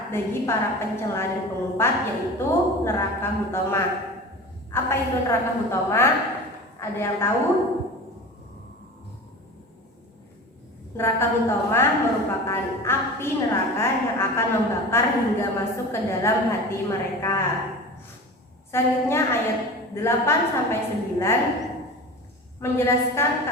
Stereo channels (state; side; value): normal; both; correlation 0.34